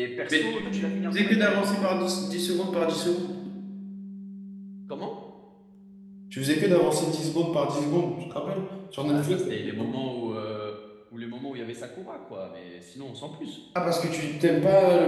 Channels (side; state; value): both; identical; correlation 1.00